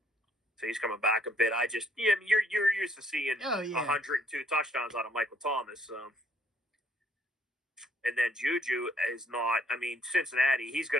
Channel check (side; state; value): both; normal; correlation 0.65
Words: So he's coming back a bit. You're used to seeing 102 touchdowns out of Michael Thomas. So. And then Juju is not. I mean, Cincinnati. He's